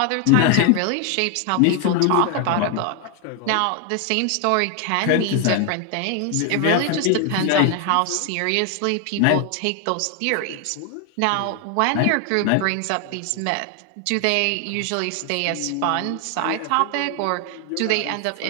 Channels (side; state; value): both; different; correlation 0.01